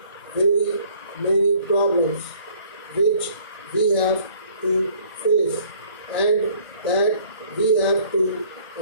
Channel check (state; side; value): inverted; both; correlation -0.57